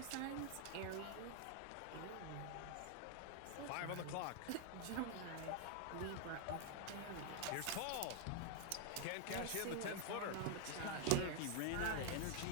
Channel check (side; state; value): both; different; correlation 0.00